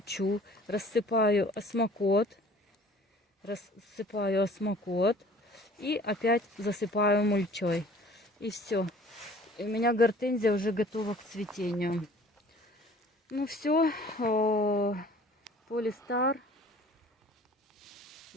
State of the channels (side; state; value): both; normal; correlation 0.50